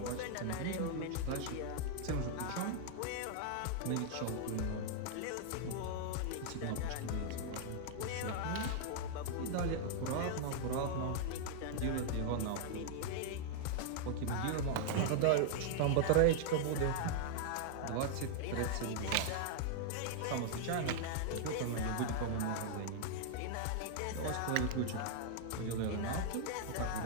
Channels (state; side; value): different; both; correlation -0.01